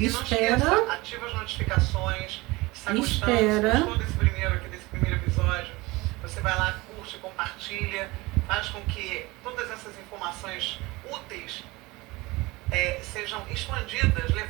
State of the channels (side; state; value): left; quieter; 22.2 dB